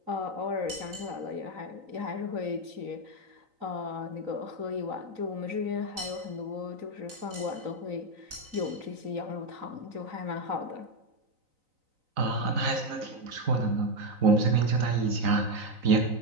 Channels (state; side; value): late; left; 3.9 ms